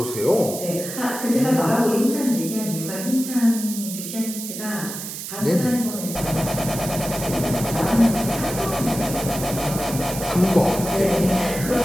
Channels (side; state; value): right; noise; hiss, 8 dB below the sound